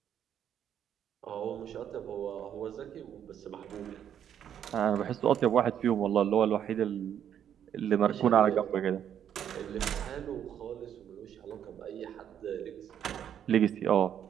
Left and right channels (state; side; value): quieter; left; 9.4 dB